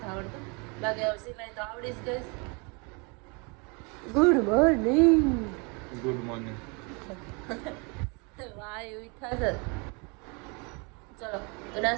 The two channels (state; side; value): quieter; left; 31.7 dB